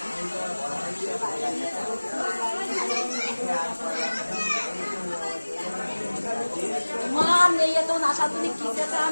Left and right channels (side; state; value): both; inverted; correlation -1.00